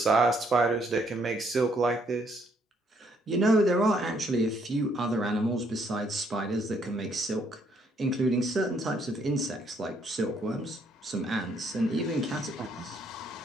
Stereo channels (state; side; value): normal; both; correlation 0.69